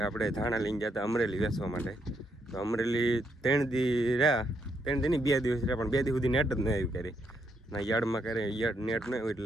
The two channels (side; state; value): both; normal; correlation 0.77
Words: આપણે ધાણા લઈને ગયા હતા અમરેલી વેચવા માટે. તો અમરેલી 3 દી રહ્યા, 3 દી નહીં 2 દિવસ રહ્યા, પણ 2 દી સુધી નેટ જ ન આવ્યું ક્યારે. ના યાર્ડમાં ક્યારે નેટ ન આવ્યું